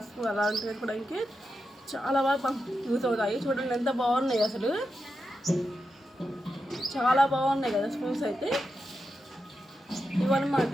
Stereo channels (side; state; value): both; normal; correlation 0.88